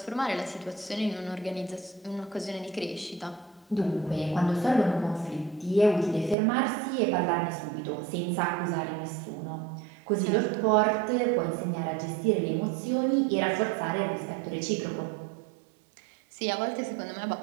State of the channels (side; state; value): left; drops out; at 6.4 s